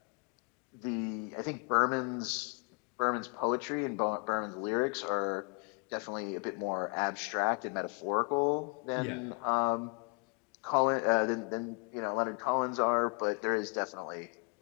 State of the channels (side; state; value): right; quieter; 35.6 dB